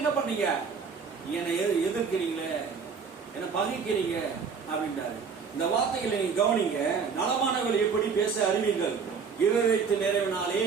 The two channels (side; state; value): left; quieter; 5.8 dB